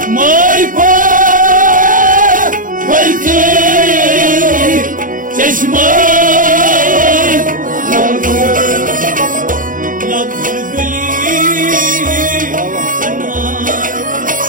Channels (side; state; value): left; late; 0.39 ms